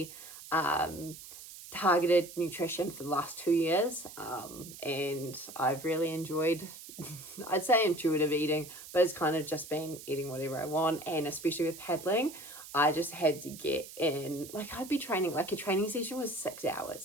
targeted nutrition for the last 2 years, and I've really enjoyed I'd say intuitive eating, but it's kind of just been eating whatever I want. And especially with paddling, I just had to get in, like I'd be training, like a training session was 6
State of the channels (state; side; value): noise; right; hiss, 14 dB below the sound